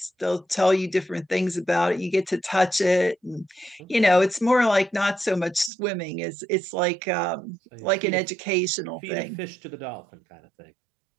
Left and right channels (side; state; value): left; drops out; at 5.7 s